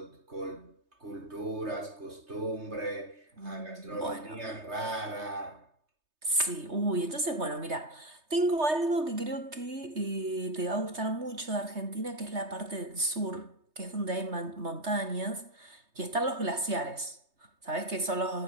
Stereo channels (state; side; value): late; left; 3.2 ms